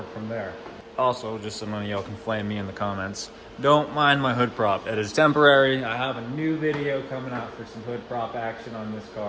from there. Also, just so none of y'all can flame me in the comments, don't mind my hood prop. It is temporary. I have a new video coming out for some hood prop action on this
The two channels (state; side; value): identical; both; correlation 1.00